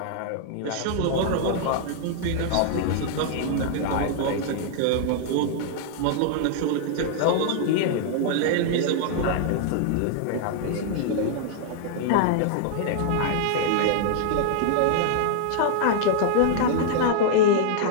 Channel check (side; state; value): both; different; correlation -0.01